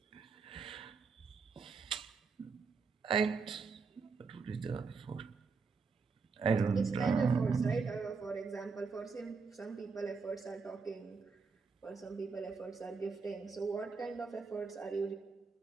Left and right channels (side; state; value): left; quieter; 4.9 dB